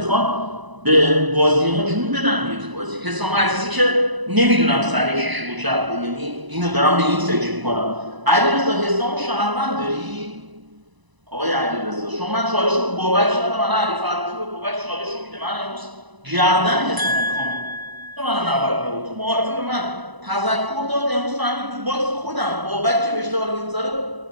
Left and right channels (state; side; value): late; left; 1.0 ms